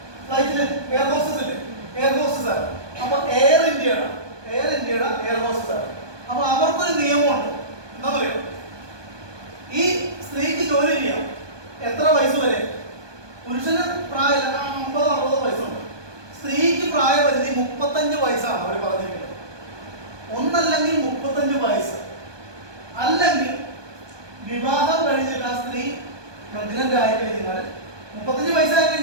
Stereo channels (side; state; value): left; late; 1.2 ms